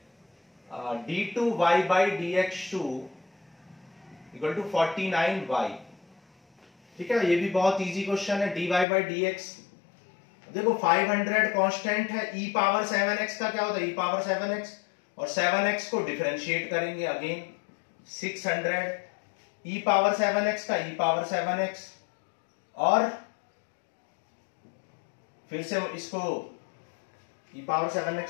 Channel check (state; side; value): drops out; right; at 8.8 s